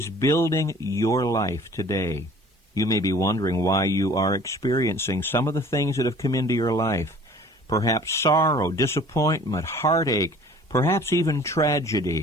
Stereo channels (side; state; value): both; normal; correlation 0.49